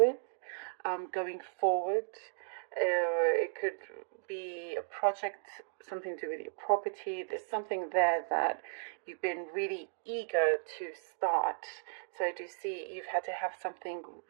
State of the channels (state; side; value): silent; left; digital silence